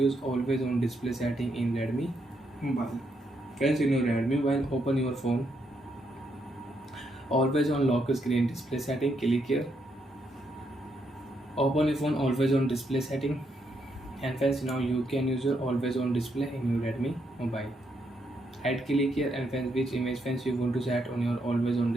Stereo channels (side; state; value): both; normal; correlation 0.77